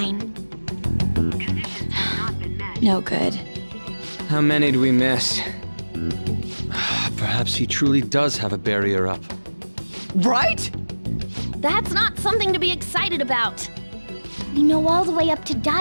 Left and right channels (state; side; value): inverted; both; correlation -1.00